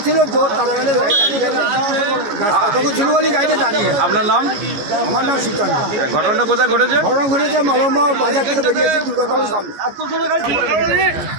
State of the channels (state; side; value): late; left; 14 ms